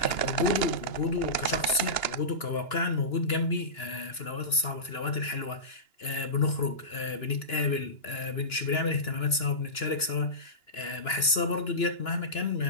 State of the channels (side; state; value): right; late; 2.9 ms